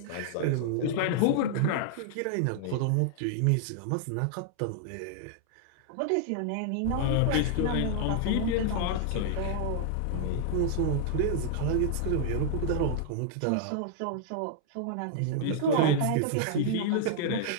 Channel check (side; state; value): both; different; correlation -0.01